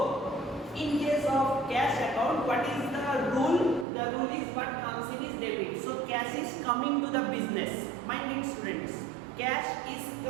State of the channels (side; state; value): left; drops out; at 3.9 s